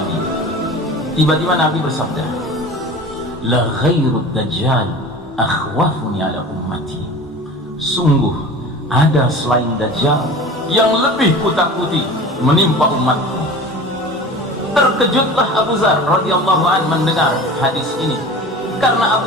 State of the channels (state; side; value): normal; both; correlation 0.38